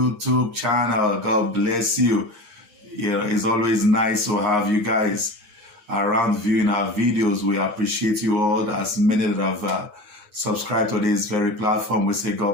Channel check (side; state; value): left; late; 8.6 ms